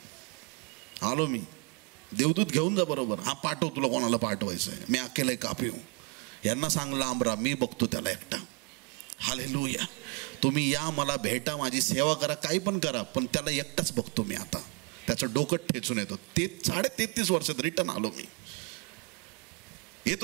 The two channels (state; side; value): quieter; left; 34.2 dB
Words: आलो मी. देवदूत घेऊन जा बरोबर. हा पाठव, तुला कोणाला पाठवायचं आहे. मी अकेला कापी हो. यांना सांग लांब राहा, मी बघतो त्याला एकटा. हालेलुया. तुम्ही या, मला भेटा, माझी सेवा करा, काही पण करा, पण त्याला एकटाच बघतो मी. आता त्याचं डोकं ठेचून येतो. 33.5 वर्षात रिटर्न आलो मी.